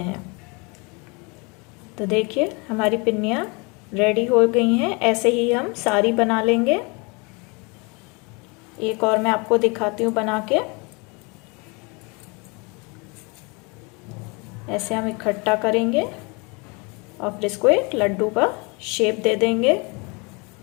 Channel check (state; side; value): quieter; right; 29.5 dB